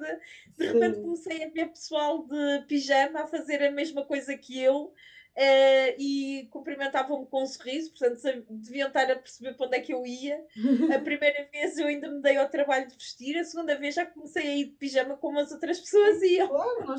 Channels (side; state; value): both; identical; correlation 1.00